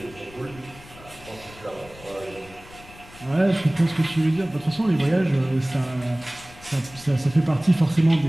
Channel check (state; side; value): noise; left; rumble, 21 dB below the sound